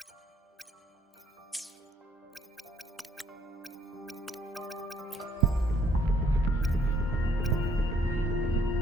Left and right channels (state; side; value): normal; both; correlation 0.65